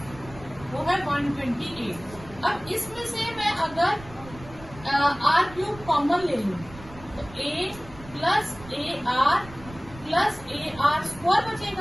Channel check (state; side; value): noise; right; rumble, 18 dB below the sound